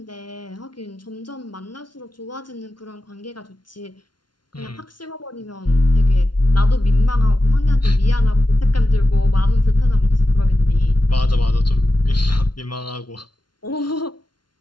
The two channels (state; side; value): late; right; 0.71 ms